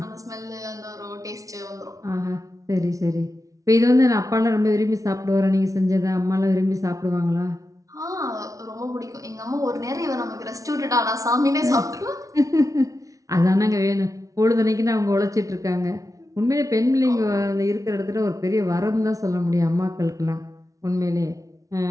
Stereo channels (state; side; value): late; left; 0.17 ms